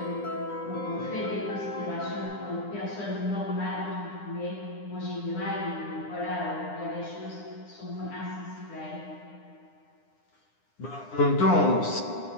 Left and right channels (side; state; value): right; late; 9.9 ms